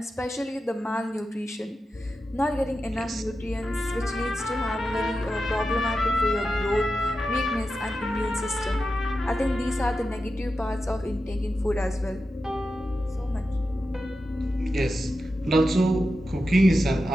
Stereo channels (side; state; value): both; normal; correlation 0.91